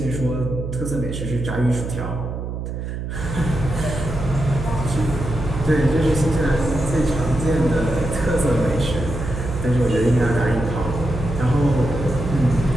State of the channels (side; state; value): right; noise; hum, 5 dB below the sound